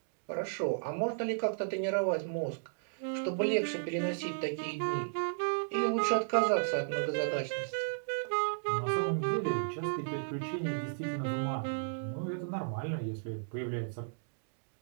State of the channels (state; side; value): silent; left; digital silence